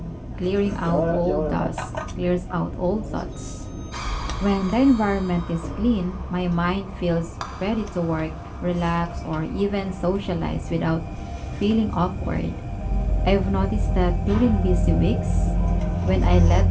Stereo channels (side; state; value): both; identical; correlation 1.00